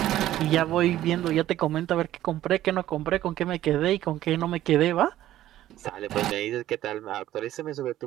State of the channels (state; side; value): quieter; left; 13.5 dB